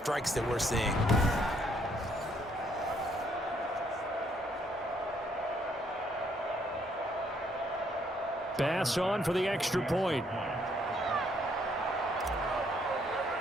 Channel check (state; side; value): normal; both; correlation 0.69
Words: that we're seeing? Pass on for the extra point.